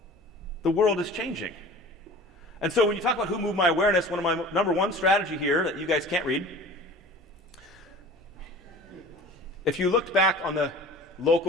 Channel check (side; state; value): both; normal; correlation 0.42